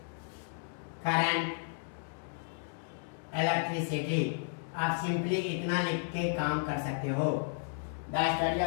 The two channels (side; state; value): right; silent; digital silence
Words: current electricity. आप सिंपली इतना लिख के काम कर सकते हो, the study